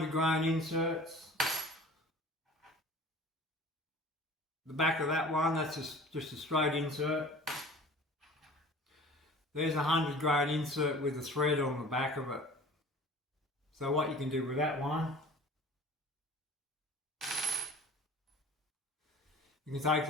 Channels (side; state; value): both; normal; correlation 0.43